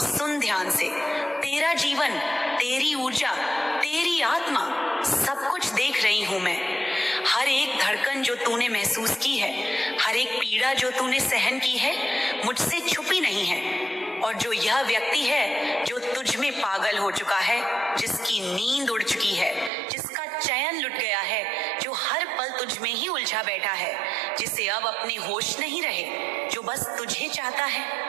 सुन ध्यान से, तेरा जीवन, तेरी ऊर्जा, तेरी आत्मा, सब कुछ देख रही हूं मैं। हर एक धड़कन जो तूने महसूस की है, हर एक पीड़ा जो तूने सहन की है, मुझसे छुपी नहीं है। और जो यह व्यक्ति है जो तुझ में पागल हो चुका है, जिसकी नींद उड़ चुकी है, जिसका चैन लुट गया है, जो हर पल तुझ में ही उलझा बैठा है, जिसे अब अपने होश नहीं रहे, जो बस तुझे चाहता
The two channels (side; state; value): left; drops out; at 19.7 s